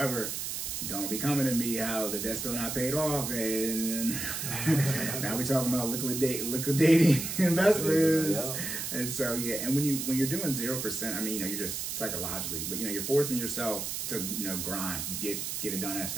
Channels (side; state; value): right; noise; hiss, 4 dB below the sound